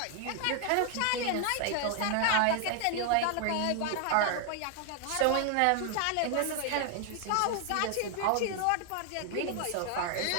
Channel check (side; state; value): both; different; correlation 0.00